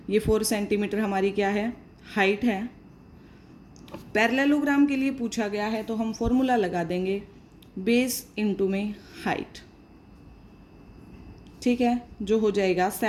ये 4 सेंटीमीटर हमारी क्या है? हाइट है। पैरेललोग्राम के लिए पूछा गया है तो हम फॉर्मूला लगा देंगे बेस इंटू में हाइट। ठीक है, जो हो जाएगा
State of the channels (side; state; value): both; identical; correlation 1.00